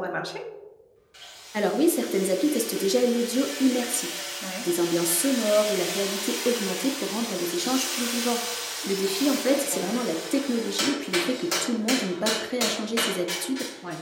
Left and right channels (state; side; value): identical; both; correlation 1.00